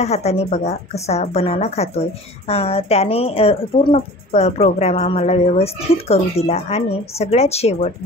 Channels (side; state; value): both; normal; correlation 0.41